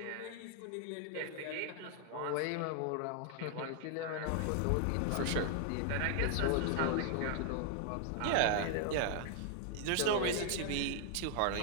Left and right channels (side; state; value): both; different; correlation 0.00